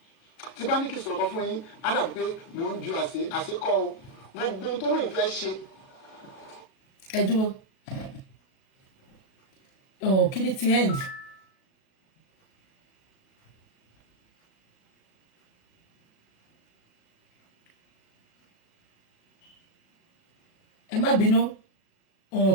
tí bá ní kí n sọ̀rọ̀ kan fún yín á dàbí pé mò ń ju àṣekọ́ o gbogbo ohun tó lóun fẹ́ ṣe. Ẹ dúró kí ni ti end. Ẹ má bínú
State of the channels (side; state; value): right; late; 37 ms